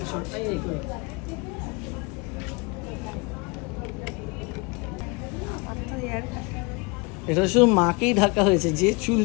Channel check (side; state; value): right; quieter; 29.1 dB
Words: তো হেয়ার কাট এটা শুধু মাকেই ঢাকা হয়েছে, যে চুল